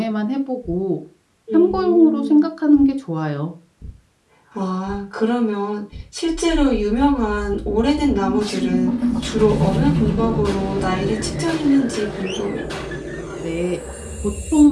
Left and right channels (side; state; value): both; identical; correlation 1.00